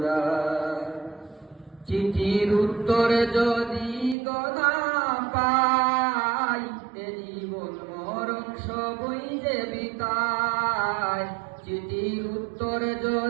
চিঠির উত্তর যদি না পাই, এ জীবন মরণ সবই যে বিতায়। চিঠির উত্তর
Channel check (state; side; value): drops out; left; at 4.2 s